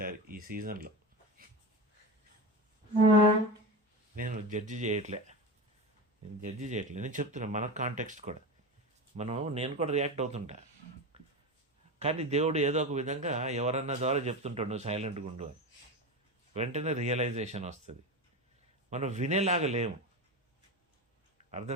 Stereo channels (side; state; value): both; normal; correlation 0.23